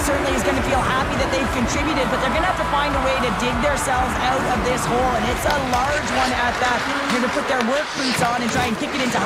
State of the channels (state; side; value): identical; both; correlation 1.00